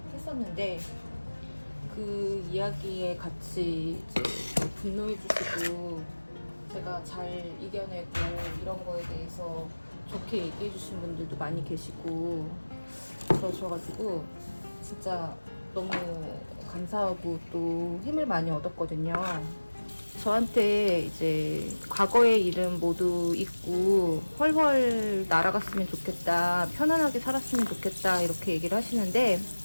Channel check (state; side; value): inverted; both; correlation -1.00